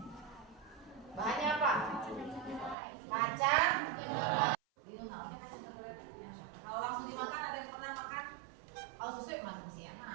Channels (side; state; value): left; drops out; at 2.8 s